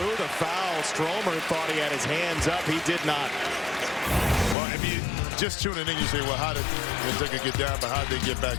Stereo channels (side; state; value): right; drops out; at 4.5 s